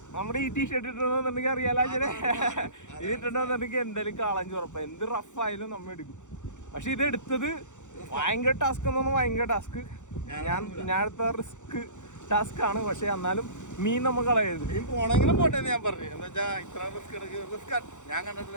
നമ്മുടെ ഈ ടീഷർട്ട് ഇട്ടിട്ടുണ്ടെന്നുണ്ടെങ്കിൽ അറിയാലോ, ഇത് ഇട്ടിട്ടുണ്ടെന്നുണ്ടെങ്കിൽ എന്തായാലും കാളാഞ്ചി ഉറപ്പാണ്. എന്ത് റഫായാലും നമ്മൾ എടുക്കും. പക്ഷെ ഇത് എടുത്തത് ഭയങ്കര ടാസ്ക് എന്ന് പറഞ്ഞാൽ ഭയങ്കര ടാസ്ക്. ഞാൻ എടുത്ത റിസ്ക് ടാസ്ക് ആണ്. പക്ഷെ എന്നാലും മീൻ നമ്മൾ കളയരുത്. മീൻ പോണെങ്കിലും പോട്ടെ ഞാൻ പറഞ്ഞു. എന്താ വെച്ചാൽ ഇത്ര റിസ്ക് ഞാൻ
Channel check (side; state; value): right; late; 0.85 ms